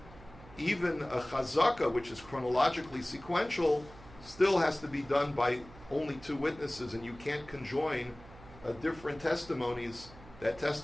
a chazaka, which is chronologically sequential, still has to be done by only two witnesses, and you can't conjoin different testimonies that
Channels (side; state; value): right; noise; hum, 20 dB below the sound